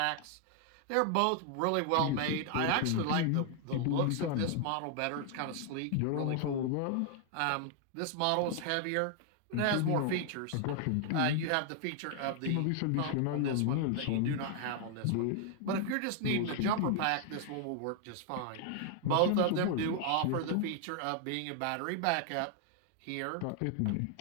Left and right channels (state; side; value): different; both; correlation 0.00